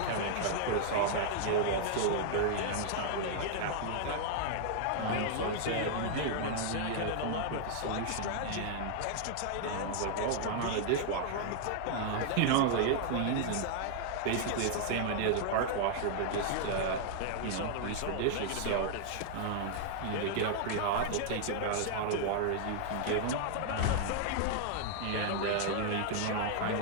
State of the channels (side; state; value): both; different; correlation 0.00